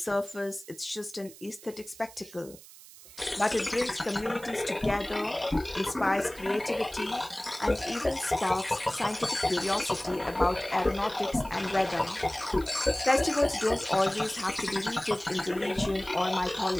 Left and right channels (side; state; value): right; noise; hiss, 19 dB below the sound